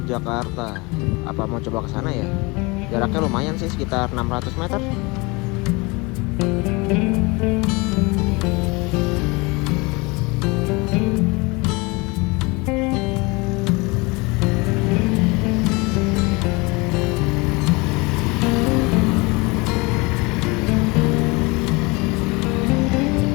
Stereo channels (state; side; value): quieter; right; 26.1 dB